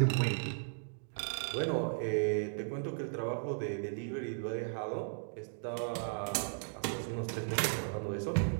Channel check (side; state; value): left; silent; digital silence